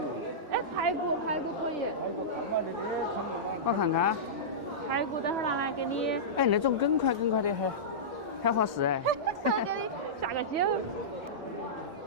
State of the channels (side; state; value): left; late; 2.1 ms